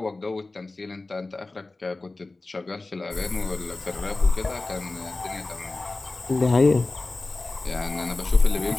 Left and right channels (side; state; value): right; quieter; 3.2 dB